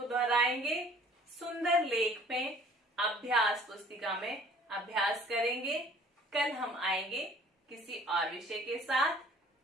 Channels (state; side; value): normal; both; correlation 0.53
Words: दोहराएंगे, सुंदर लेख में अभ्यास पुस्तिका में अभ्यास करेंगे। कल हम आएंगे किसी और विषय के साथ।